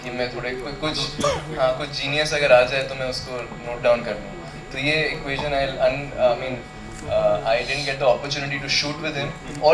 कि मैं थोड़े कुछ जीनियस अगर आ जाए तो मैं उसको नोट डाउन कर लूँ. तो ये equation I didn't get the opportunity to shoot with him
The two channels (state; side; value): identical; both; correlation 1.00